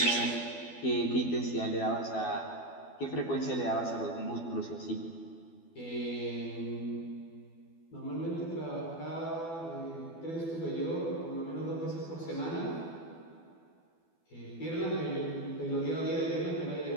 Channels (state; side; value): late; right; 12 ms